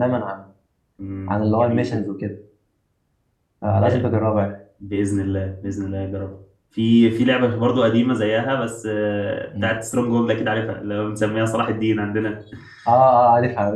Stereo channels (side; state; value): both; identical; correlation 1.00